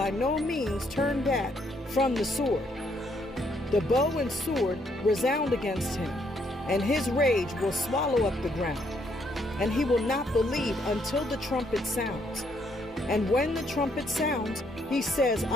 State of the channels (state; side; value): normal; both; correlation 0.72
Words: no means turn back from the sword. The bow and sword resound against him, and his rage will swallow up the ground. And he will not believe until the trumpet sounds. And when the trumpet sounds, he says,